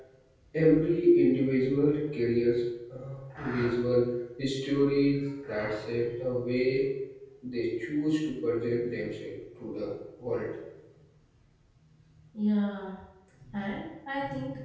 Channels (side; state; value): both; identical; correlation 1.00